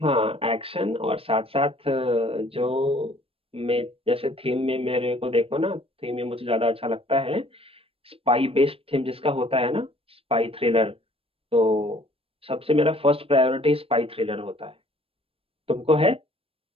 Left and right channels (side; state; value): left; late; 0.28 ms